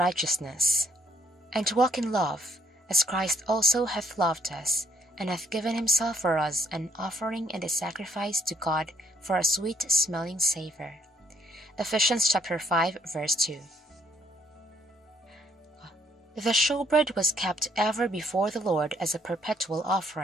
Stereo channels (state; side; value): normal; both; correlation 0.68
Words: and to walk in love, as Christ also hath loved us, and hath given himself for us an offering and a sacrifice to God for a sweet-smelling savour. Ephesians chapter 5, verse 2. The showbread was kept ever before the Lord as a perpetual